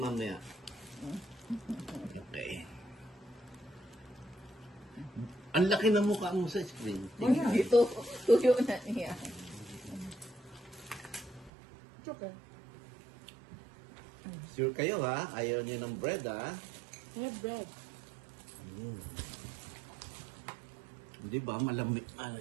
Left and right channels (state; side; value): drops out; left; at 11.5 s